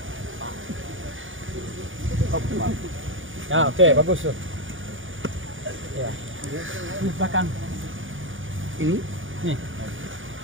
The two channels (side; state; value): left; late; 0.57 ms